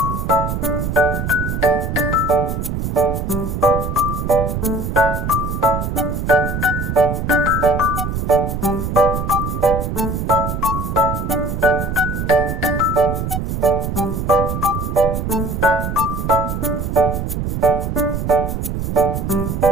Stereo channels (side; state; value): right; noise; rumble, 2 dB below the sound